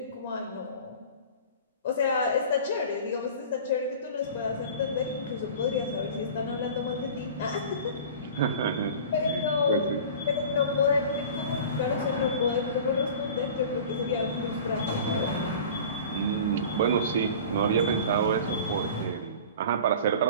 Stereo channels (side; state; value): both; inverted; correlation -0.39